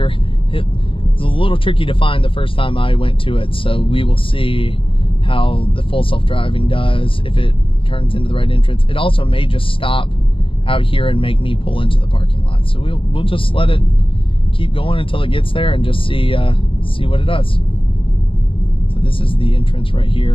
it was a little tricky to find the first time I went to it. So we will see how the full self-driving does, if it turns into the right entrance. It also may just stop out here and make me pull into the parking lot. So we'll just let it keep going until it gets there and just see what it does. So this is the entrance right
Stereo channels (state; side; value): late; right; 0.25 ms